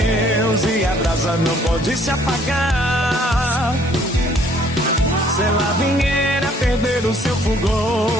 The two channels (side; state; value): both; normal; correlation 0.61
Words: e a brasa não pode se apagar. Se ela vier a perder o seu fulgor,